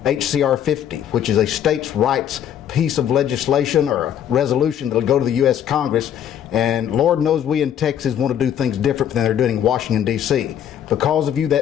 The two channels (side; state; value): right; quieter; 9.7 dB